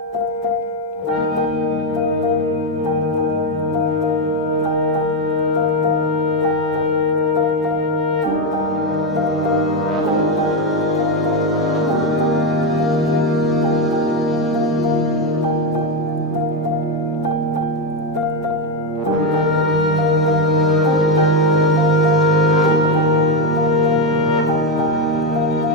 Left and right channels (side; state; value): both; normal; correlation 0.08